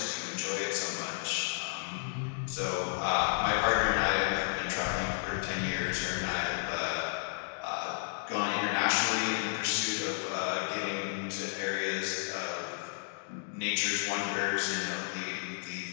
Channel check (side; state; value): right; silent; digital silence